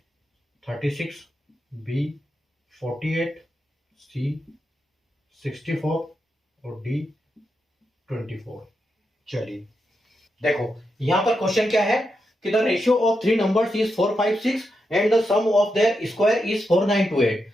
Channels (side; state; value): both; normal; correlation 0.85